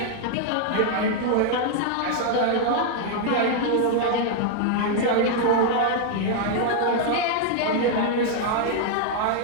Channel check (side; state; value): both; different; correlation 0.00